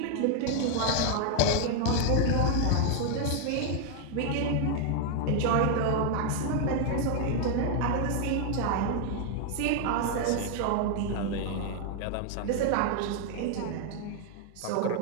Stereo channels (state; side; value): different; both; correlation 0.00